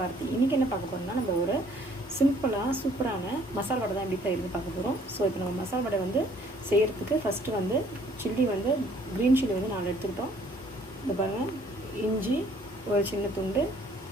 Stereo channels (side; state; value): both; normal; correlation 0.60